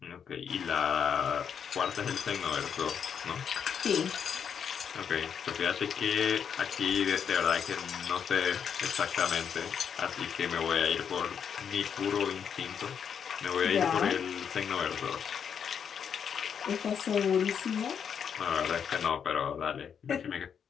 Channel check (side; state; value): right; quieter; 7.5 dB